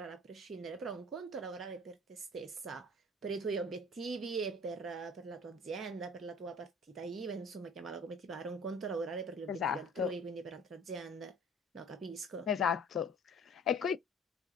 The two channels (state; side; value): normal; both; correlation 0.47